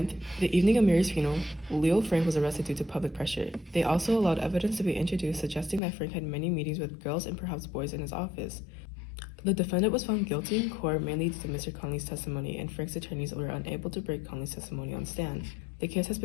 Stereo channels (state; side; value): drops out; right; at 5.8 s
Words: the evening of Mary's funeral, Leo Frank was arrested due to public pressure. They also allowed evidence to be introduced suggesting that Frank had many meetings with girls and perhaps boys in his office. The defendant was found guilty in court mainly due to Mr. Conley's testimony, and Frank's attorneys were unable to break Conley's testimony on stand. The case has